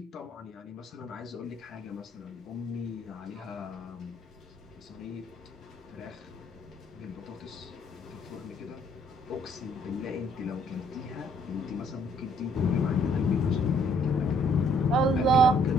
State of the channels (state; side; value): normal; both; correlation 0.64